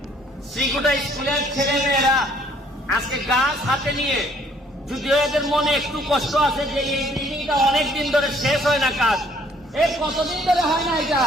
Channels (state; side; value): normal; both; correlation 0.62